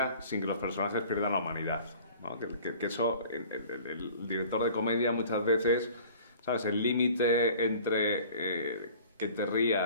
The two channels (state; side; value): inverted; both; correlation -0.48